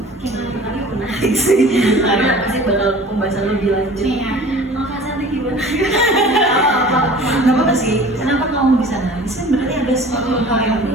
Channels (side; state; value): both; normal; correlation 0.44